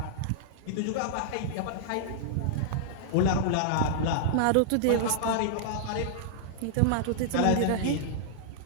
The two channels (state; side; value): different; both; correlation -0.02